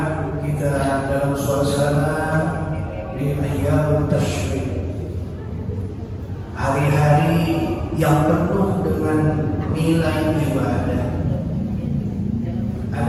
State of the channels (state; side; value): identical; both; correlation 1.00